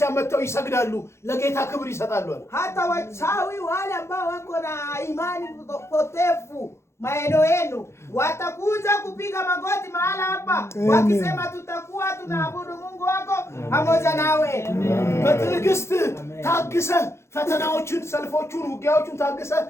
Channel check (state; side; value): late; right; 0.13 ms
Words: መተው ይሰግዳሉ ለጌታ ክብር ይሰጣሉ hata wachawi wale ambao wako na imani potefu maeneo yenu watakuja kupiga magoti mahala hapa wakisema tutakuwa tunaabudu Mungu wako pamoja nawe በትዕግስት ታግሰ ፈተናዎችን ሰልፎቹን ውጊያዎቹን ታግሰ